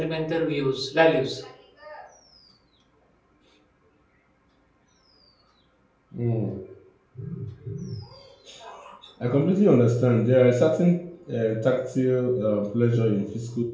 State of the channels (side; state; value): both; identical; correlation 1.00